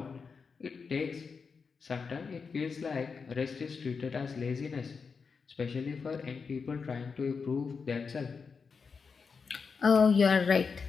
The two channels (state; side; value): quieter; right; 5.3 dB